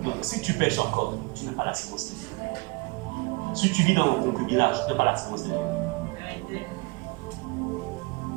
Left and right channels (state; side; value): quieter; left; 27.0 dB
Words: Donc, si tu pêches encore, tu n'as pas la sémence de Dieu. Si tu vis dans le concubinage, tu n'as pas la sémence de Dieu.